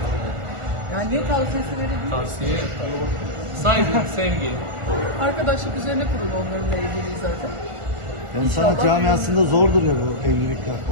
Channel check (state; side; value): late; left; 1.4 ms